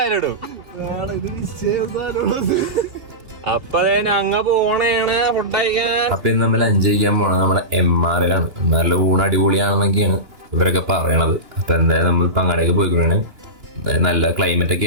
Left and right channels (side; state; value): left; late; 2.9 ms